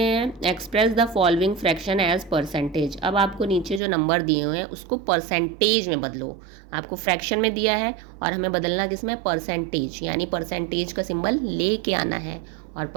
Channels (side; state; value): left; drops out; at 3.8 s